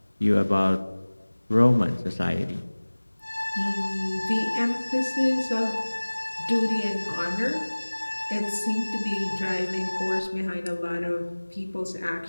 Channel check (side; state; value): both; inverted; correlation -1.00